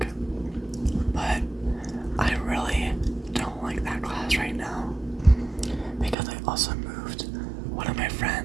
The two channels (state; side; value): drops out; left; at 6.2 s